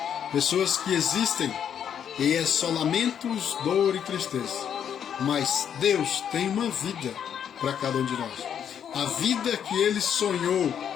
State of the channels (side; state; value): right; quieter; 8.7 dB